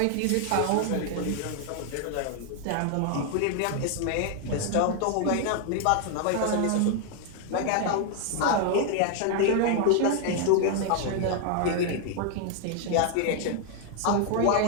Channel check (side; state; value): both; different; correlation 0.00